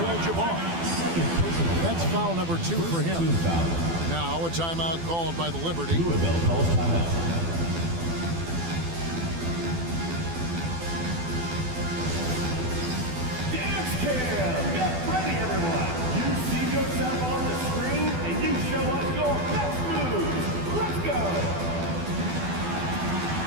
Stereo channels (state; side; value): late; left; 12 ms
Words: That's foul number 2 for him. Now a timeout called by the Liberty. Louisville calls timeout. Dance cam! Get ready, everyone! You see yourself on the screen, and you show us your best moves. Let's go!